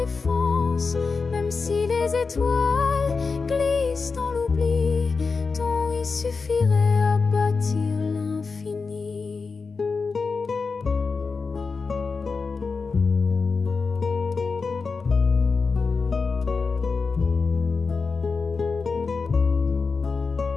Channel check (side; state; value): right; quieter; 4.6 dB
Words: Même si les étoiles glissent dans l'oubli, ton oui suffirait à bâtir l'infini.